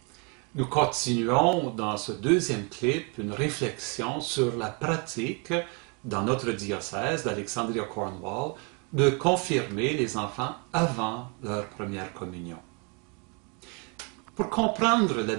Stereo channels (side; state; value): left; quieter; 34.0 dB